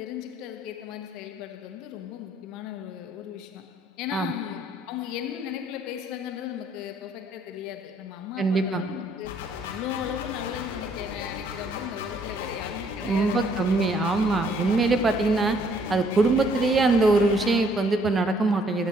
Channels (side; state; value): both; normal; correlation 0.65